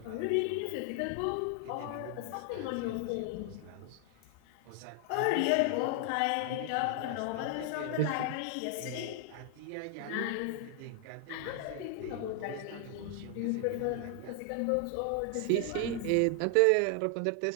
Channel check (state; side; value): different; both; correlation 0.00